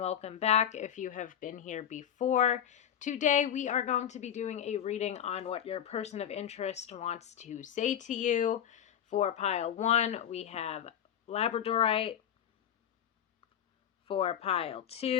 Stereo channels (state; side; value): quieter; right; 9.6 dB